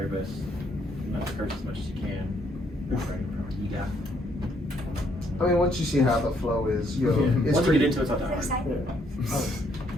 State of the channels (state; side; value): normal; both; correlation 0.70